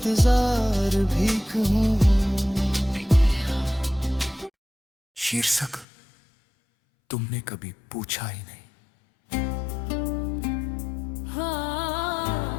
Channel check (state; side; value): drops out; right; at 5.9 s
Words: भी कहूँ। शीर्षक तुमने कभी पूछा ही नहीं।